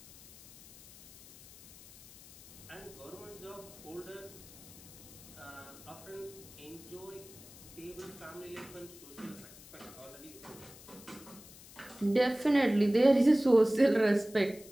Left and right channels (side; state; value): left; noise; hiss, 19 dB below the sound